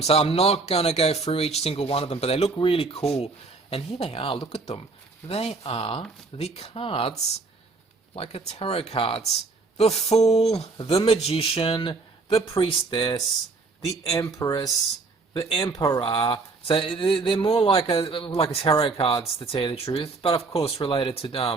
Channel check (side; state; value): left; quieter; 3.9 dB